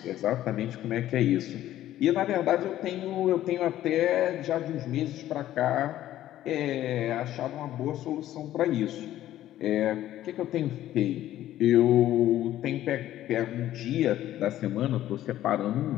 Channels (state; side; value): quieter; right; 13.3 dB